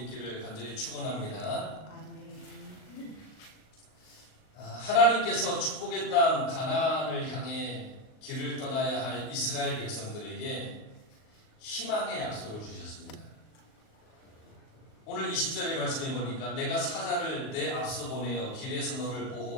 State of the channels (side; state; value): right; late; 39 ms